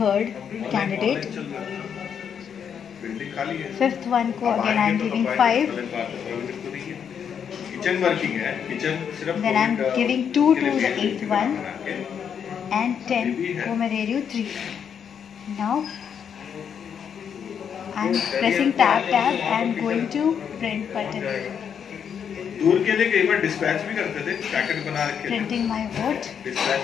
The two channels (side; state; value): right; quieter; 7.7 dB